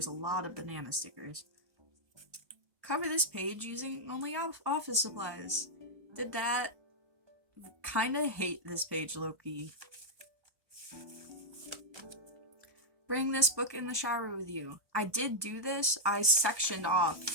a lot of banana stickers. Cover this page using only office supplies. Did that. Kinda hate this page, low-key. Bring this book in the shower with you. I did do this. I sectioned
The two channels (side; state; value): left; late; 1.1 ms